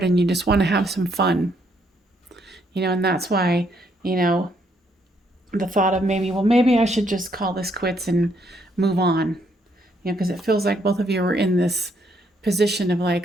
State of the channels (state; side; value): normal; both; correlation 0.72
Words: and you just want to have some fun. And that's why, the thought of maybe I should just call this quits and move on. Because it feels like both of you are in this position of